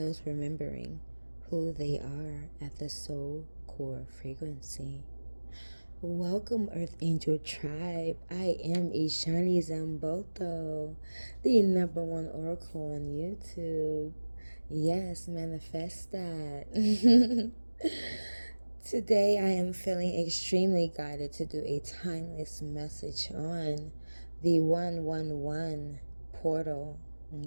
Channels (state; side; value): inverted; both; correlation -1.00